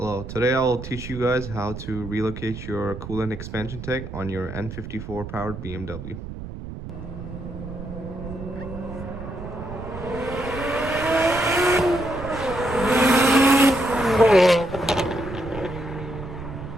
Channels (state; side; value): noise; right; rumble, 10 dB below the sound